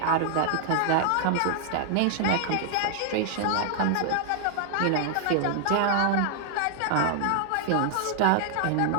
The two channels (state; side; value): different; both; correlation 0.00